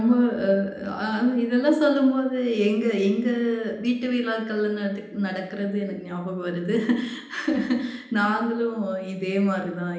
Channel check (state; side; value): identical; both; correlation 1.00